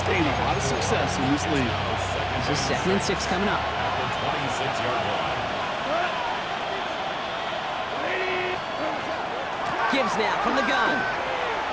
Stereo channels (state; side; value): identical; both; correlation 1.00